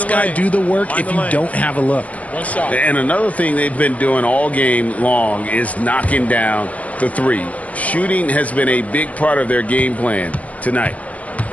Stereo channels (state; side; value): late; right; 0.068 ms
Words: guy do the work if you don't have a look. And another thing they've been doing all game long is knocking down the 3. Shooting has been a big part of their game plan tonight.